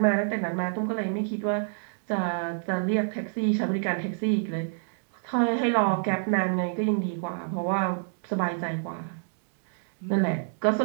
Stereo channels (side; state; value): left; silent; digital silence